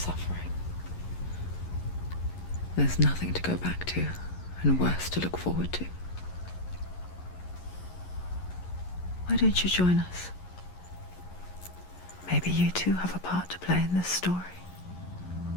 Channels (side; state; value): right; late; 11 ms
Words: There's nothing to go back to, and worse to look forward to. Why don't you join us? Maybe you too have a part to play in this story.